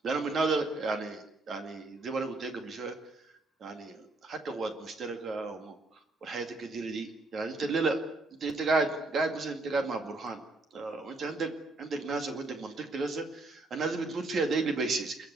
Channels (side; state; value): left; quieter; 3.1 dB